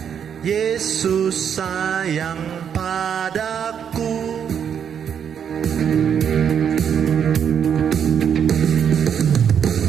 Yesus sayang padaku.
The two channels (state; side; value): quieter; left; 8.1 dB